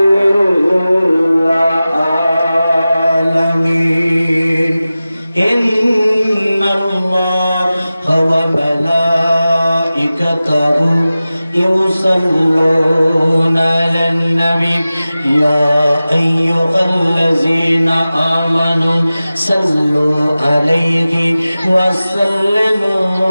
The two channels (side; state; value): both; inverted; correlation -0.96